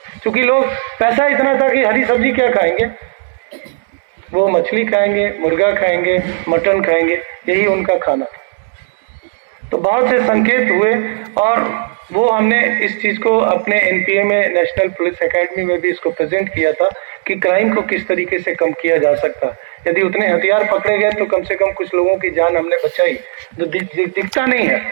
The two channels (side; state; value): left; quieter; 37.3 dB